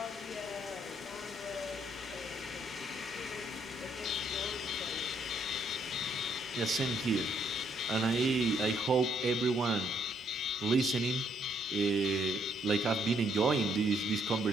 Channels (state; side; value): normal; both; correlation 0.71